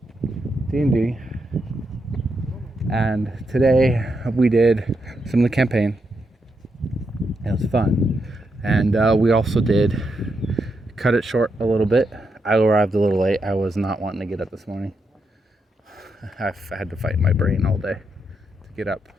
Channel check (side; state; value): both; normal; correlation 0.83